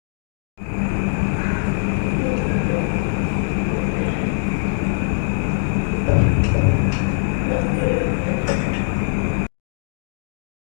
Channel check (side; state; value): right; silent; digital silence